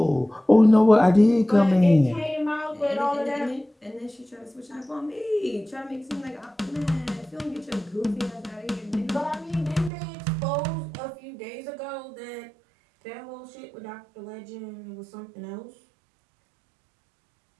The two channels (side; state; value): left; drops out; at 9.9 s